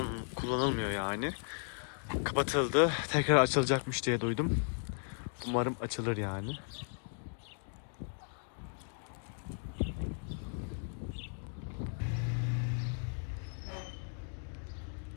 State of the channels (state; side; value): silent; right; 54 dB below the other